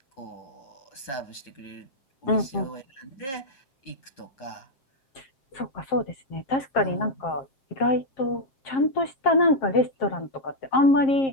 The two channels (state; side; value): late; right; 7.5 ms